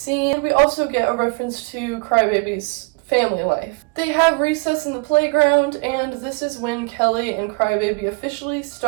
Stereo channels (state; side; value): quieter; left; 30.6 dB